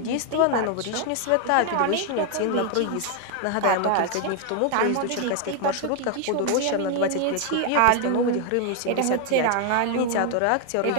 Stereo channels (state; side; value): different; both; correlation 0.00